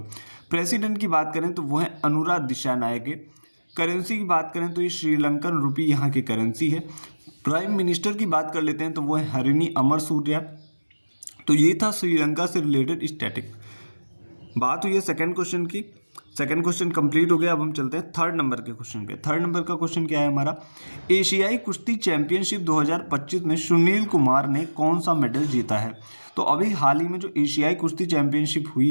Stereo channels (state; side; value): inverted; both; correlation -1.00